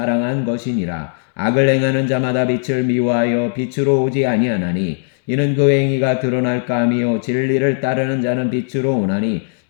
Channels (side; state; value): right; silent; digital silence